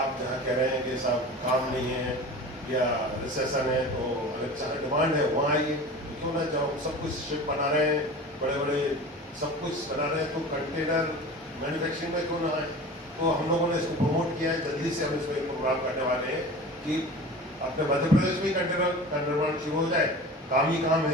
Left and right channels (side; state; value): both; normal; correlation 0.36